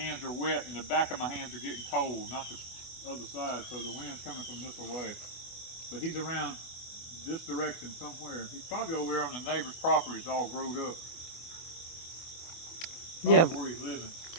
hands are wet and the back of my hands are getting cold, not the other side, so the wind's coming from this way. But he's around this direction somewhere. He's probably over there on the neighbor's property. It's all growed up. Probably Yeah. where he's living.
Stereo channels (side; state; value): right; late; 24 ms